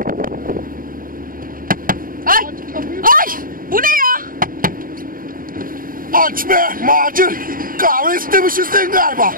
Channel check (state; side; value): late; left; 0.41 ms